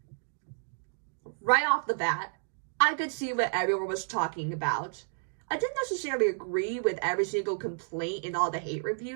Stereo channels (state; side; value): silent; left; digital silence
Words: Right off the bat, I could see what everyone was talking about. I didn't necessarily agree with every single complaint in all the hate